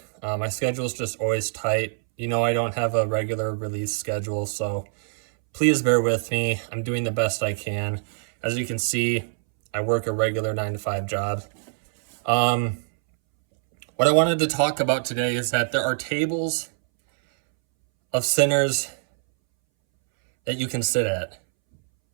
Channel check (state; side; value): silent; left; 62 dB below the other